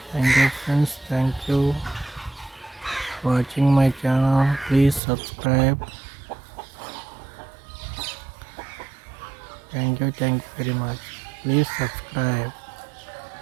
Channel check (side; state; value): left; drops out; at 5.0 s